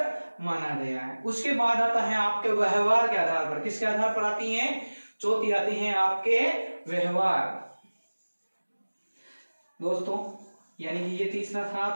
माना गया है। उसके बाद आता है आपके व्यवहार के आधार पर। किसके आधार पर आती है? चौथी आती है आपके व्यवहार। दोस्तों यानी कि ये तीसरा था,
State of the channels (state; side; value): inverted; both; correlation -1.00